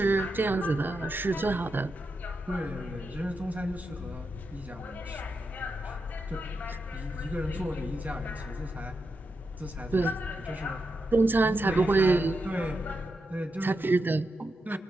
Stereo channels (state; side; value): normal; both; correlation 0.86